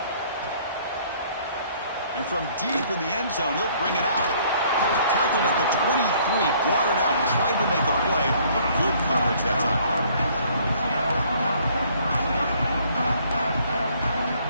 And from deep in the end zone, he'll bring it out. Tackled at the 23, brought it out, tried to make a play, but good coverage that time.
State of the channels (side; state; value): both; inverted; correlation -0.60